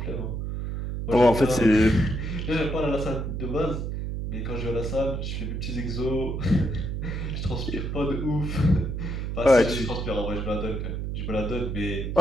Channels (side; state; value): right; noise; hum, 3 dB below the sound